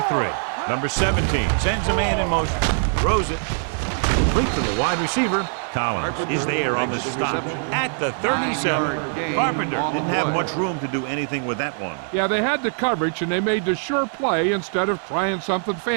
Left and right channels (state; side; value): silent; left; digital silence